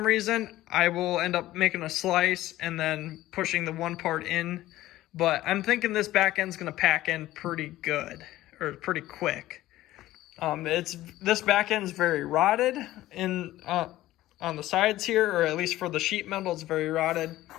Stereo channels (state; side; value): quieter; right; 15.5 dB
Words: reason, I will end up making a slice and then pushing the one part in. But I'm thinking this back end's gonna pack in pretty good, or pretty quick. This back end's very rotted on the sides here, or at least for the sheet metal, it's very rotted.